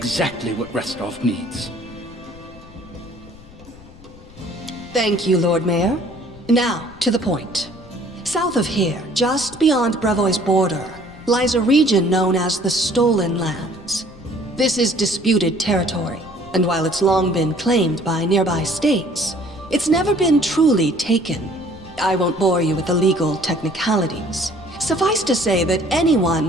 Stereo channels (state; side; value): noise; left; rumble, 21 dB below the sound